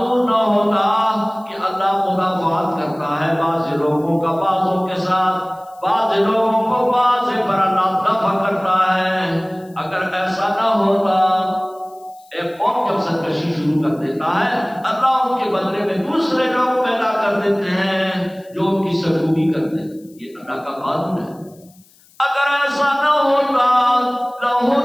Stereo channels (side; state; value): left; noise; hiss, 29 dB below the sound